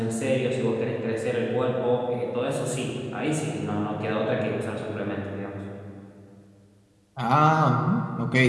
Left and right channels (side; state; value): both; identical; correlation 1.00